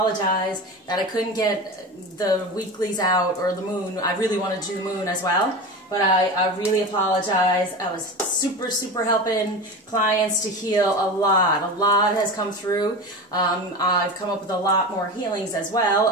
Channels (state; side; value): normal; both; correlation 0.27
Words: that I couldn't get the weeklies out or the moon. I really wanted to do the moon as well, but I really apologize. I was super helping clients to heal a lot. A lot has come through. I've come up with a lot more healings as